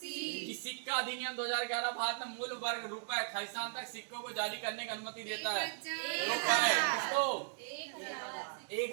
सिक्का अधिनियम 2011 भारत में मूल वर्ग रुपए खालिस्तान तक सिक्कों को जारी करने की अनुमति देता है। रुपए किसको?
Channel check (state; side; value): silent; left; digital silence